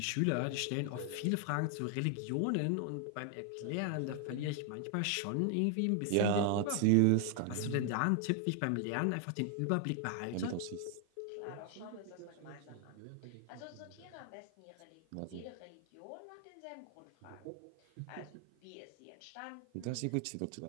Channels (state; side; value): different; both; correlation 0.00